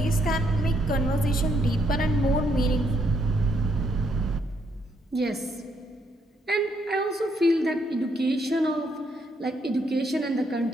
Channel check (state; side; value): normal; both; correlation 0.74